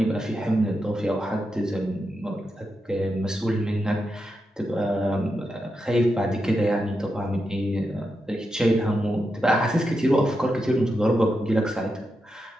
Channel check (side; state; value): both; normal; correlation 0.87